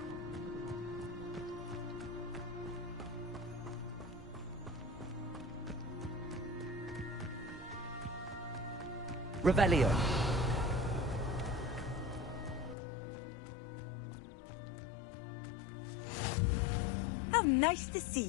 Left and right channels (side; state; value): right; drops out; at 12.8 s